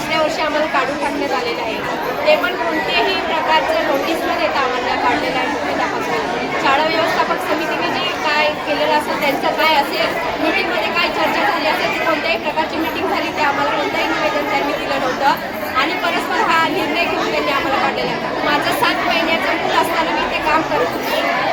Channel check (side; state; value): both; identical; correlation 1.00